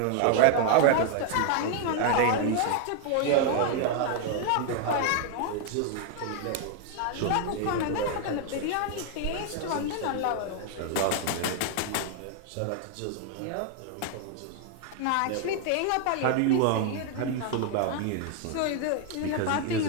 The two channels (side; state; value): both; different; correlation 0.00